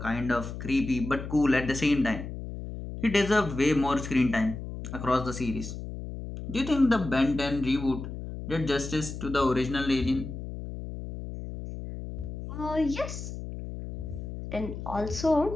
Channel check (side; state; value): left; noise; hum, 8 dB below the sound